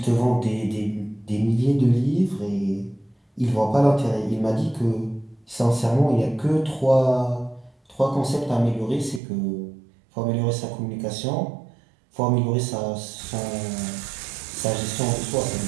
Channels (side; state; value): left; drops out; at 9.2 s